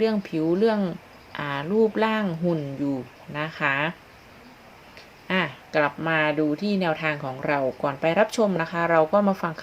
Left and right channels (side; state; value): both; identical; correlation 1.00